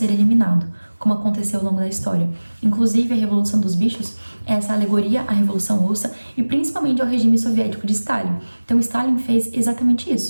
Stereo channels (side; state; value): both; inverted; correlation -1.00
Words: eliminado, como aconteceu ao longo da história. Inclusive, a Revolução dos Bichos é essa alegoria à Revolução Russa e principalmente ao regime soviético de Stalin. Então, Stalin fez exatamente